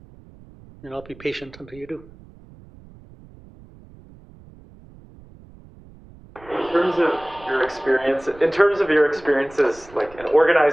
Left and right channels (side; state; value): right; noise; rumble, 23 dB below the sound